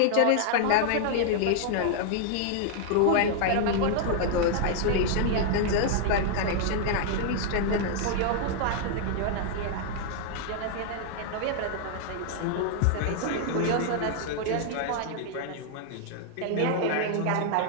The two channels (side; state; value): both; different; correlation -0.01